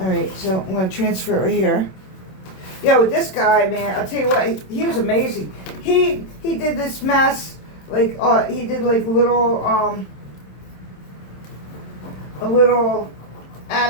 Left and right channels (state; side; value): late; right; 27 ms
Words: right, so I'm going to transfer it right here. Yeah, with this guy, man, I'll tell you what, he was amazing. He did this mess. Like, he did like a little